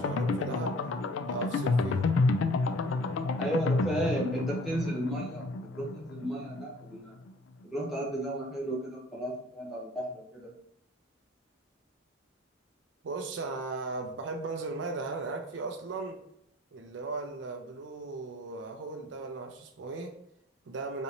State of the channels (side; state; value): both; normal; correlation 0.52